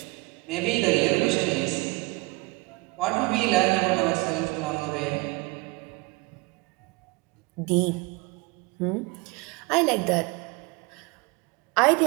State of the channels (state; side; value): quieter; left; 25.6 dB